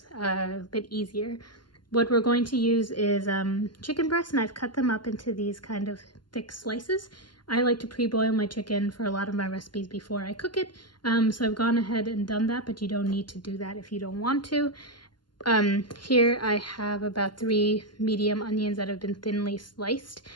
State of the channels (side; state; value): right; late; 0.71 ms